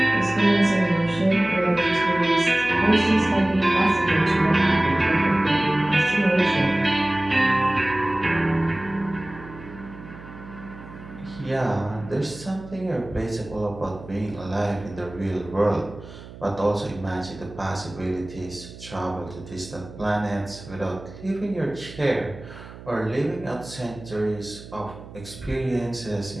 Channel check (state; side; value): noise; right; hum, 16 dB below the sound